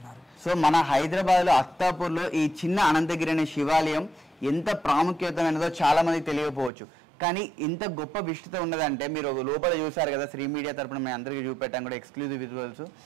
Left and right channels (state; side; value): drops out; left; at 6.7 s